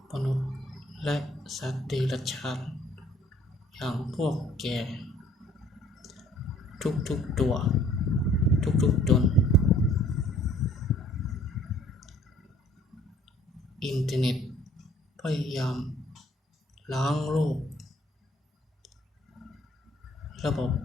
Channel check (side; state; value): both; normal; correlation 0.57